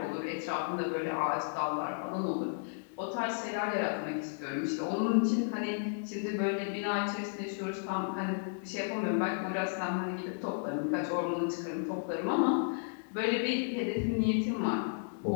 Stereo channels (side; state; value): right; silent; digital silence